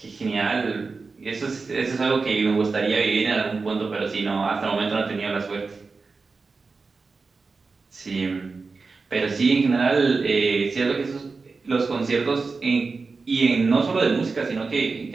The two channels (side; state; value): left; quieter; 4.3 dB